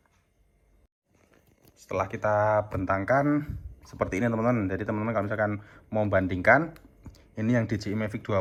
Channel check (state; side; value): identical; both; correlation 1.00